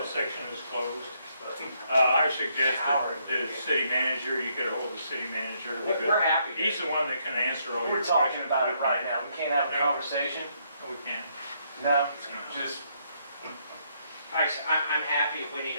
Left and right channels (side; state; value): both; inverted; correlation -0.73